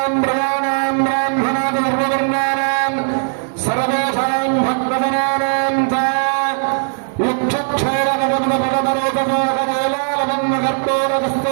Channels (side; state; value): left; silent; digital silence